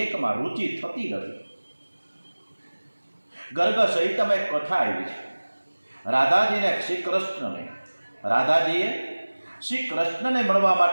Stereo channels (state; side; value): inverted; both; correlation -1.00